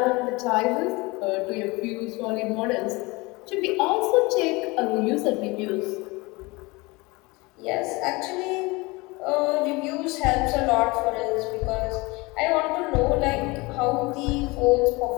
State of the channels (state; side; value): quieter; right; 24.2 dB